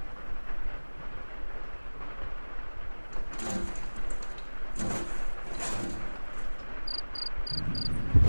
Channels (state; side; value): inverted; both; correlation -1.00